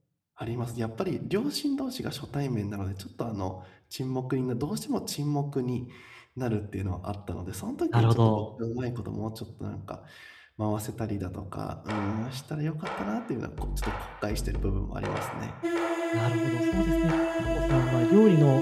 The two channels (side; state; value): both; identical; correlation 1.00